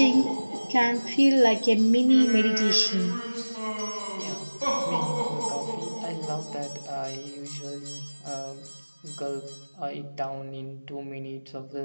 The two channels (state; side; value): inverted; both; correlation -1.00